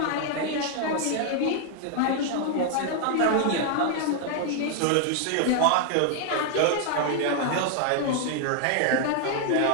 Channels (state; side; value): different; both; correlation 0.00